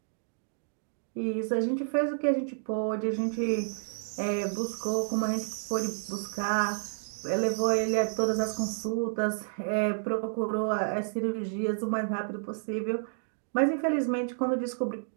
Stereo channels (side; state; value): left; silent; digital silence